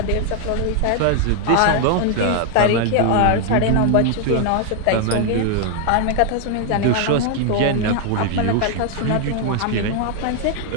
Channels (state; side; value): different; both; correlation 0.00